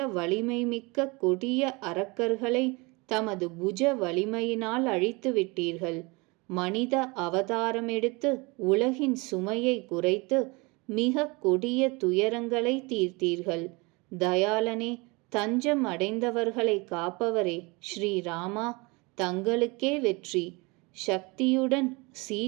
வலிமைமிக்க கொடிய அரக்கர்களை தமது புஜ வலிமையினால் அழித்து விட்டீர்கள். மனித அவதாரமெடுத்து உலகின் சுமையை குறைத்து மிக கொடிய துயரங்களை தீர்த்தீர்கள். தயாளனே, தஞ்சம் அடைந்தவர்களை காப்பவரே, ஸ்ரீராமா, தங்களுக்கே வெற்றி. சக்தியுடன்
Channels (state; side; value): quieter; left; 26.7 dB